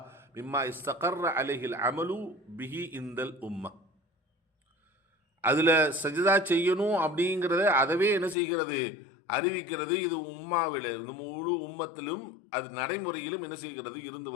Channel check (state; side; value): drops out; right; at 8.3 s